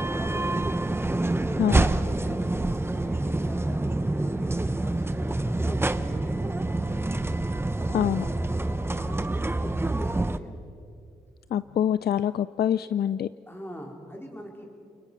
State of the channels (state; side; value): normal; both; correlation 0.81